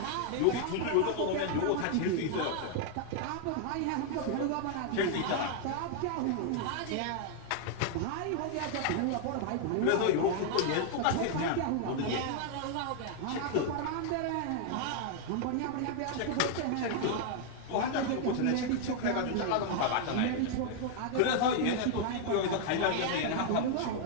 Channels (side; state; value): both; different; correlation 0.00